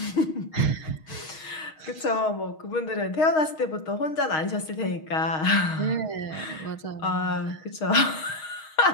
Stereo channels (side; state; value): right; late; 6.4 ms